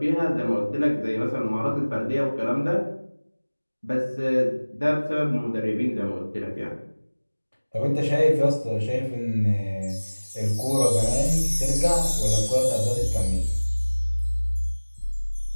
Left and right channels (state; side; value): inverted; both; correlation -1.00